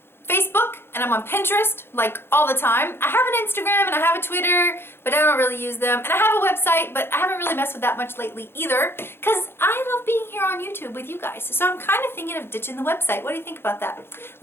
Facebook and I'm on Pinterest, like all the time. I have an Instagram and I have a Twitter, but I don't really use them. And I have a website, but I haven't really messed with that much lately either, because I love being here on YouTube with you guys. So I'm kind of thinking of ditching the website. What do you think about that?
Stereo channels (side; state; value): right; late; 0.11 ms